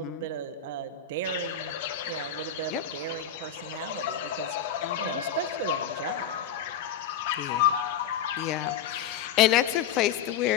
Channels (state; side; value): quieter; right; 7.7 dB